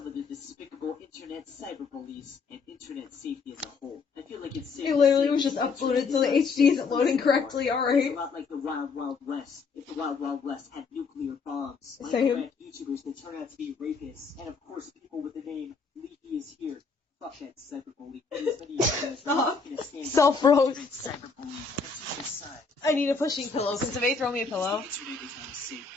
of the despicable internet cyberbullies and internet safety as a whole. I feel like it's safe. It literally was just uploaded, so the HD isn't loading correctly, It's a alright? lot like the Wild Wild West. If the Wild Wild West had nuclear bombs, Same. Minecraft YouTubers will turn out to be rapists, and of course people with the name Leafy is here. Fuck that cyberbully. As many of you guys are taking a stand Self-roast. against cyberbullying and suicide. I need a pushing pillow. Can somebody throw me a pillow? The internet is not a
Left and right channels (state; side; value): quieter; right; 4.8 dB